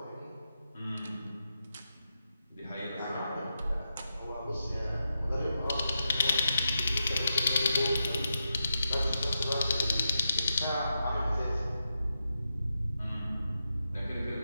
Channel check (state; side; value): inverted; both; correlation -0.87